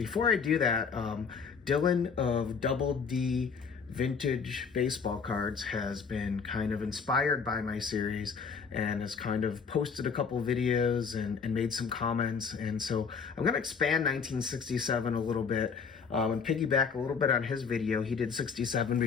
I do that, Dylan of Double D Vintage Baseball Cards has been kind of inspired by my series and has kind of posted a couple videos and made some comments. And so I'm going to expand 1967 a little bit and piggyback a little bit on his video. He did 67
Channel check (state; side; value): quieter; right; 5.9 dB